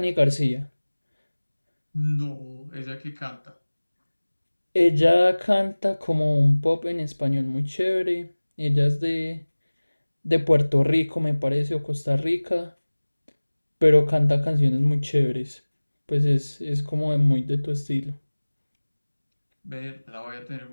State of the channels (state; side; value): inverted; both; correlation -1.00